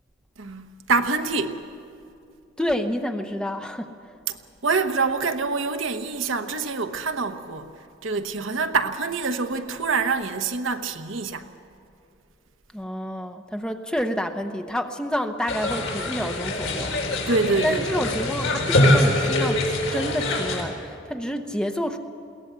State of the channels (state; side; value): normal; both; correlation 0.41